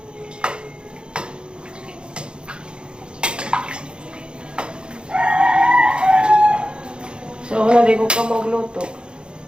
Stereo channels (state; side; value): late; left; 0.052 ms